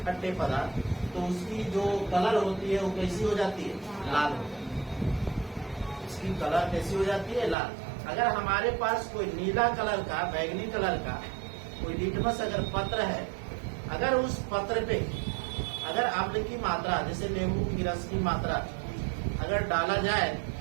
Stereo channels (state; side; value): drops out; left; at 7.6 s